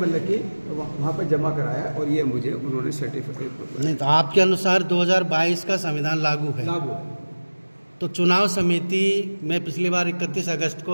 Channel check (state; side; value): inverted; both; correlation -1.00